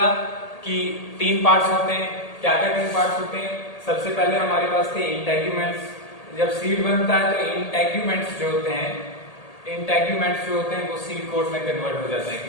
कि तीन पार्ट्स होते हैं। क्या क्या तीन पार्ट्स होते हैं? सबसे पहले हमारे पास थे इंटेग्यूमेंट्स। जब सीड बनता है तो इंटेग्यूमेंट्स जो होते हैं वो सीड कोट में कन्वर्ट हो जाते हैं।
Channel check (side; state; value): right; late; 1.8 ms